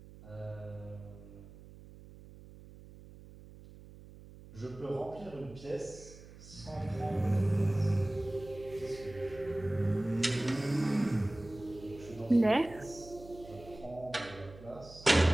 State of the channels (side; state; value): right; noise; hum, 18 dB below the sound